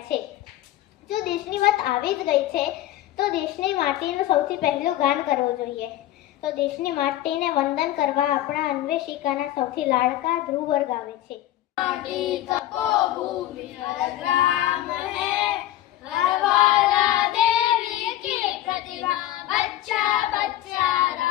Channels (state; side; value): quieter; right; 14.0 dB